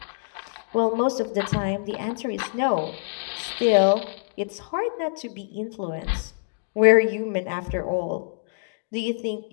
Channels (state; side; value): silent; right; digital silence